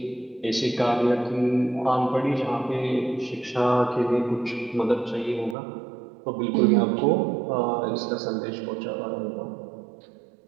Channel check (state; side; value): drops out; left; at 5.6 s